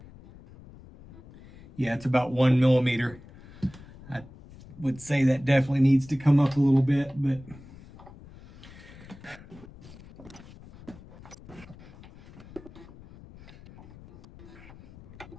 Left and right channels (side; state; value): left; noise; rumble, 20 dB below the sound